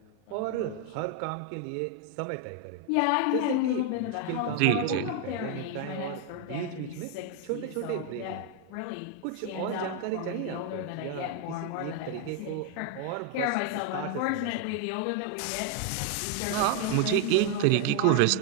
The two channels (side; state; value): both; different; correlation 0.01